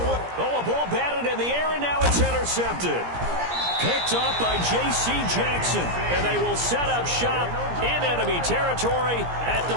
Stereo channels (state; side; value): late; left; 17 ms